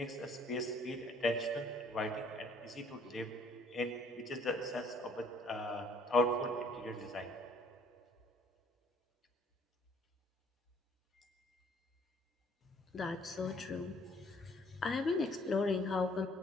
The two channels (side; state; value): both; normal; correlation 0.60